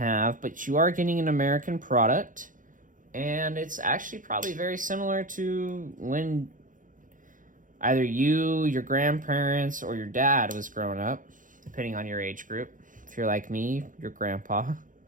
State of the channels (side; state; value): left; late; 0.38 ms